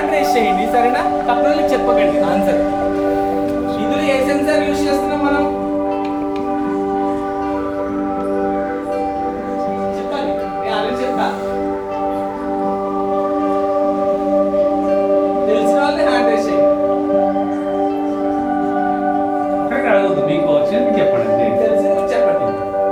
రేస్ చేయండి సరేనా? తక్కువ చెప్పకండి ఆన్సర్. ఇందులో ఏ సెన్సార్ యూజ్ చేస్తున్నాం మనం? చెప్పాలి, నేను ఆల్రెడీ చెప్పా. తెలిసిన వాళ్ళే హ్యాండ్ రేస్ చేయండి. అక్కడికి అడగద్దు, మీకు వచ్చింది చెప్పండి. తెలిసింది కూడా చెప్పండి.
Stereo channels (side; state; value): both; identical; correlation 1.00